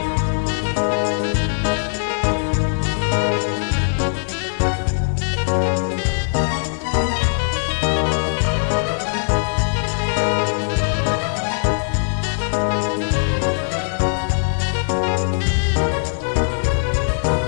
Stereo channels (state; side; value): silent; right; 64 dB below the other